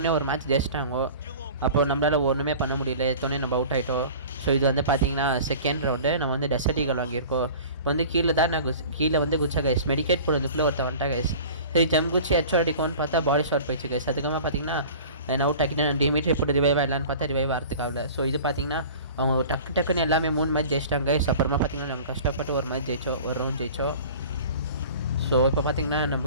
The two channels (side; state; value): both; inverted; correlation -0.41